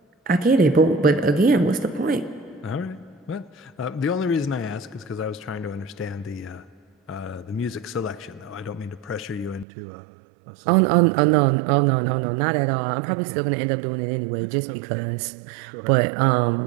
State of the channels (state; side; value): drops out; left; at 9.7 s